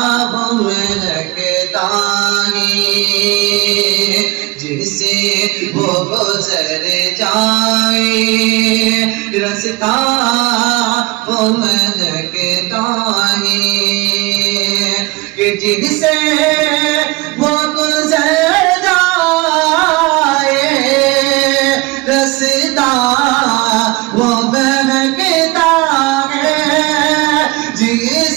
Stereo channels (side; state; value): left; quieter; 23.7 dB